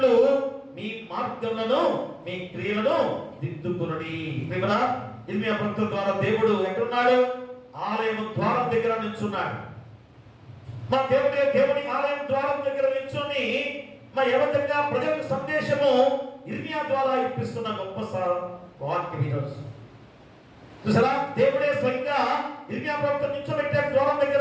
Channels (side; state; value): both; identical; correlation 1.00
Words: మీ మార్గములను, మీ క్రియలను దిద్దుకునుడి. ఇర్మియా ప్రవక్త ద్వారా దేవుడు ఎక్కడున్నాడు, ఆలయం ద్వారం దగ్గర నిల్చున్నాడు. మా దేవుని ఆలయం ద్వారం దగ్గర నిల్చొని ఏ విధంగా ప్రజలకు సందేశము ఇర్మియా ద్వారా ఇప్పిస్తున్న గొప్ప వాక్యం ఈరోజు చూసారా. దేవుడే స్వయంగా ఇర్మియా ప్రవక్త నిల్చోబెట్టాడు ద్వారం